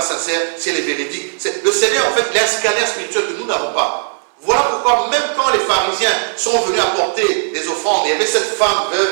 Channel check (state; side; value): silent; left; digital silence